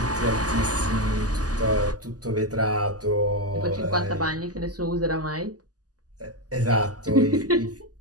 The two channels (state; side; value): late; left; 0.67 ms